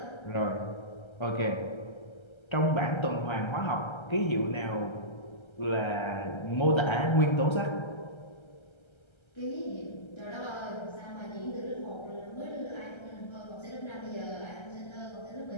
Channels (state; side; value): late; right; 1.3 ms